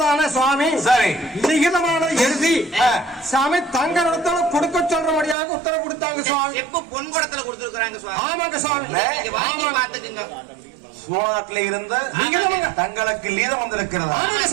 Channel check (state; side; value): drops out; left; at 5.4 s